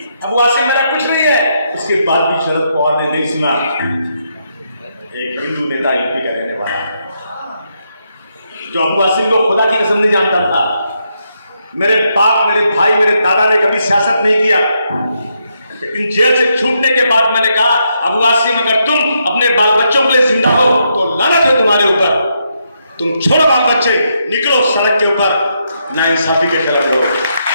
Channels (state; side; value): inverted; both; correlation -0.79